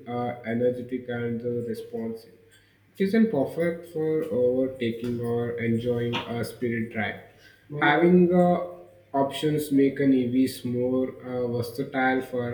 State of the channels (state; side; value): identical; both; correlation 1.00